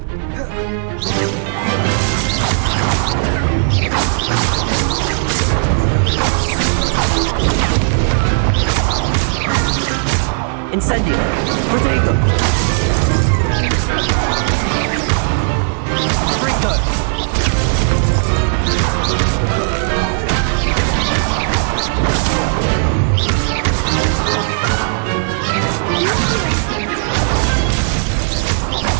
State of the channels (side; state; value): left; silent; 69 dB below the other